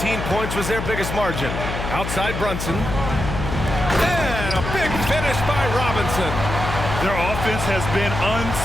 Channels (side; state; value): left; noise; hum, 5 dB below the sound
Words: points was their biggest margin. Outside Brunson. And a big finish by Robinson. Their offense has been